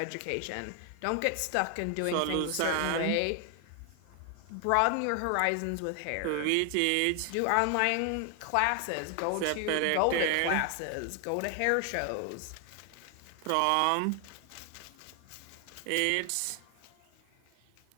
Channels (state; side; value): different; both; correlation 0.00